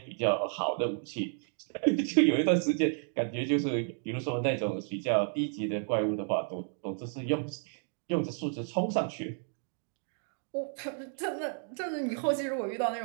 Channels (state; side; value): silent; left; 57 dB below the other